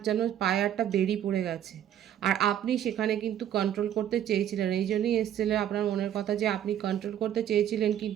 যেন পায়ে একটা বেরি পড়ে গেছে, আর আপনি সেখানে কিন্তু কন্ট্রোল করতে চেয়েছিলেন। এই জন্যই এসেছিলেন আপনার মনের কথা, যে আপনি কন্ট্রোল করতে চেয়েছিলেন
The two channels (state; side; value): quieter; left; 10.6 dB